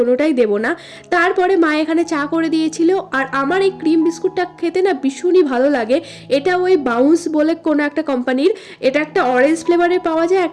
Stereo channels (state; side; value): identical; both; correlation 1.00